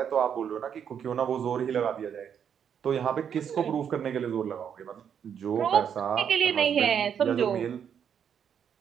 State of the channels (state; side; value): quieter; left; 8.1 dB